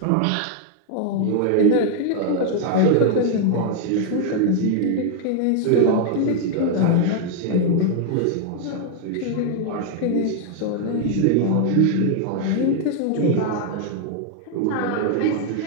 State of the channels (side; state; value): both; different; correlation 0.00